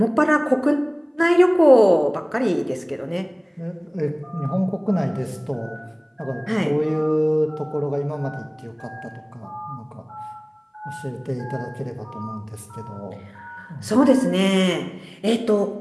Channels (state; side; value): identical; both; correlation 1.00